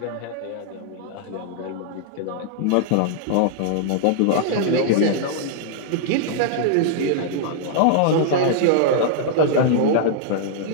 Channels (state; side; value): different; both; correlation -0.01